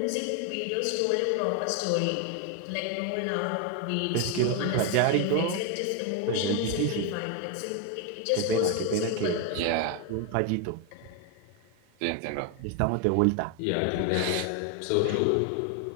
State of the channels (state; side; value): different; both; correlation 0.01